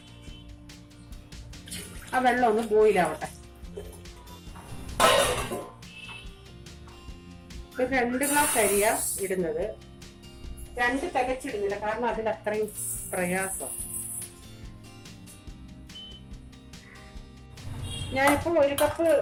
ആ വെള്ളം ഒന്ന് ബോയിലാവട്ടെ. ഒരു 2 ഗ്ലാസ് അരിയാ ഇടുന്നത്. 2 തികച്ചിടുന്നില്ല, കാരണം അതിൽ അത്രയും പ്രയാസം. ഞാനിപ്പോ 1 കപ്പ്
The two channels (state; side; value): identical; both; correlation 1.00